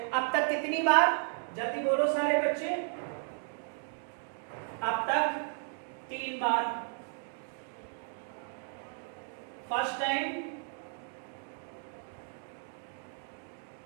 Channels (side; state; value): left; silent; 55 dB below the other